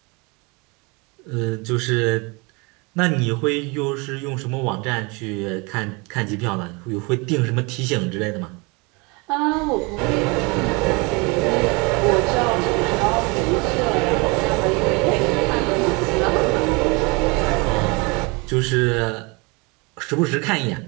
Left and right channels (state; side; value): quieter; left; 28.4 dB